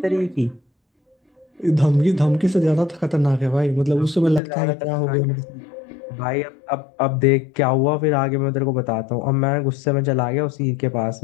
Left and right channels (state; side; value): drops out; right; at 4.4 s